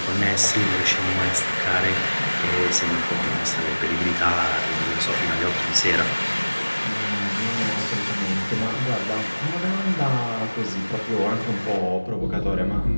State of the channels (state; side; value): inverted; both; correlation -1.00